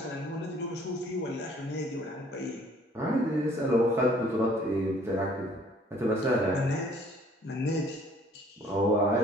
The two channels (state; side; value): normal; both; correlation 0.58